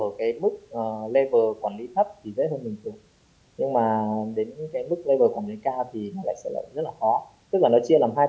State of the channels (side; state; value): both; identical; correlation 1.00